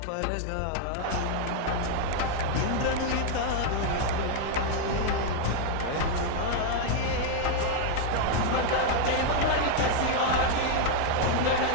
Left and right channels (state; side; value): different; both; correlation 0.00